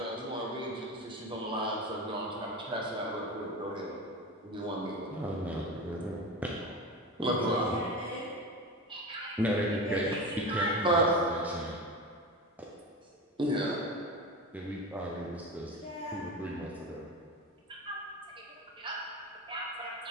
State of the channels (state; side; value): normal; both; correlation 0.26